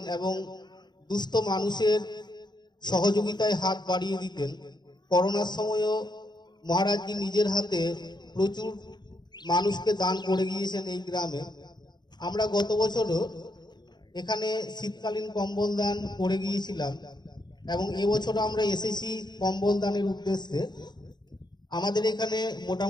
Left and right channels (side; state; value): right; late; 0.21 ms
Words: এবং দুস্থ মানুষের সহযোগিতায় হাত বাড়িয়ে দিতেন। করোনার সময়ও মহারাজজি নিজের হাতে প্রচুর মানুষকে দান করে গিয়েছেন এই গ্রামে। আমরা গত বছরও এখানে শীতকালীন কম্বল দান করে গিয়েছিলাম এবং এবছর আমরা এসেছি কম্বল দানের উদ্দেশ্যে। আমাদের এখানে